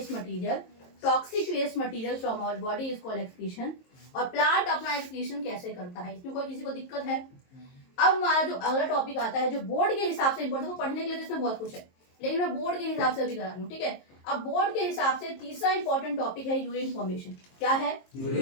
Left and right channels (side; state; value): right; late; 22 ms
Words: material, toxic waste material from our body is called excretion. और प्लांट अपना एक्सक्रीशन कैसे करता है, इसमें कोई किसी को दिक्कत है। अब हमारा जो अगला टॉपिक आता है, जो बोर्ड के हिसाब से इंपॉर्टेंट, पढ़ने के लिए इसमें बहुत कुछ है, लेकिन मैं बोर्ड के हिसाब से अभी करा रही हूँ, ठीक है। अब बोर्ड के हिसाब से तीसरा इंपॉर्टेंट टॉपिक है यूरिन फॉर्मेशन। क्या है,